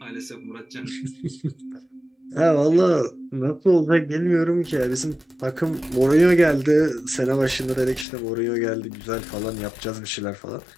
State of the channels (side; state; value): right; drops out; at 8.1 s